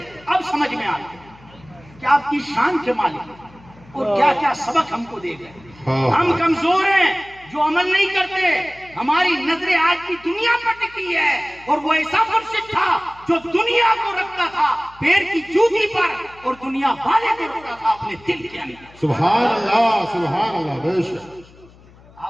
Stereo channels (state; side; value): noise; left; hum, 25 dB below the sound